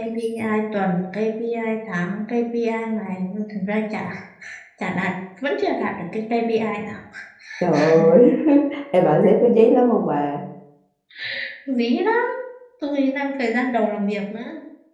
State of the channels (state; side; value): identical; both; correlation 1.00